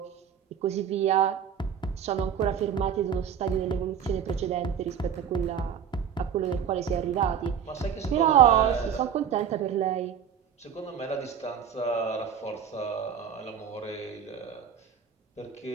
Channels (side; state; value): left; quieter; 8.0 dB